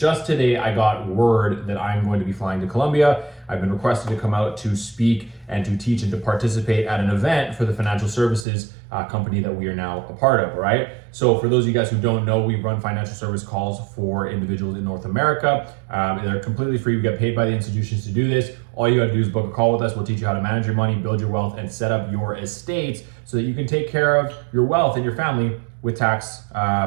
today, I got word that I'm going to be flying to Colombia. I've been requested to come out to speak and to teach and to participate at an event for the financial services company that we are now a part of, all right? So for those of you guys who don't know, we run financial service calls for individuals in North America. They're completely free. We get paid by the institutions to do this. All you gotta do is book a call with us. We'll teach you how to manage your money, build your wealth, and set up your estates so that you can take care of your wealth and your family with tax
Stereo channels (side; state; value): left; drops out; at 8.5 s